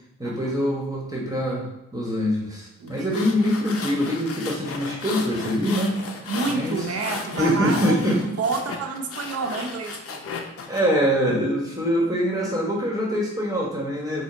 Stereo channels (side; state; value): both; normal; correlation 0.54